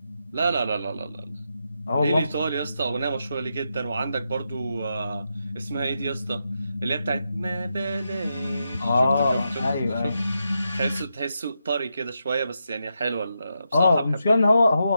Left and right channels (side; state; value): both; inverted; correlation -0.85